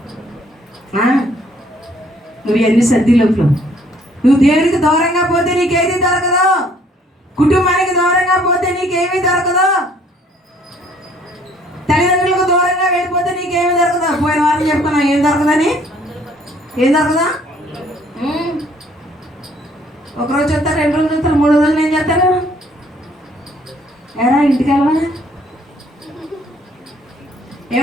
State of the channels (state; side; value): normal; both; correlation 0.61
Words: నువ్వు ఎన్ని సర్ది లోపల నువ్వు దేవునికి దూరంగా పోతే నీకేది దొరకదు. కుటుంబానికి దూరంగా పోతే నీకేమీ దొరకదు. తల్లిదండ్రులకు దూరంగా వెళ్ళిపోతే నీకేమీ దొరకదు. పోయిన వారం చెప్పుకున్నావు ఏం దొరకదని. ఏం దొరకదా? ఒకరోజు చెప్తారు, 2 రోజులు చెప్తారు, 3 రోజులు ఏం చేస్తారు? ఎరా ఇంటికి వెళ్ళవా?